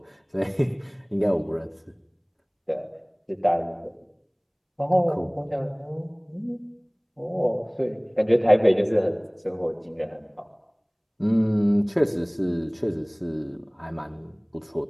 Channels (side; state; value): both; identical; correlation 1.00